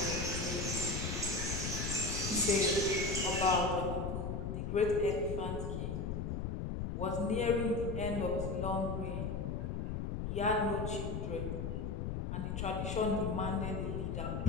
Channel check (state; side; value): noise; left; rumble, 2 dB below the sound